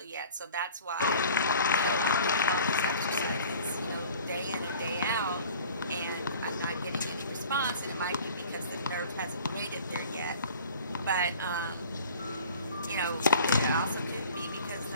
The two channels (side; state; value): both; inverted; correlation -0.46